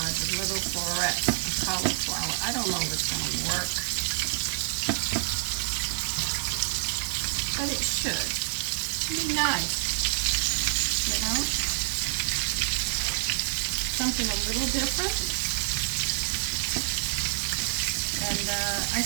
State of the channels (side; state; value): left; silent; digital silence